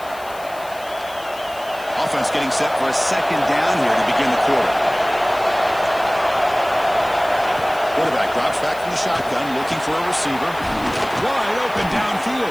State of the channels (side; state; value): left; noise; hiss, 20 dB below the sound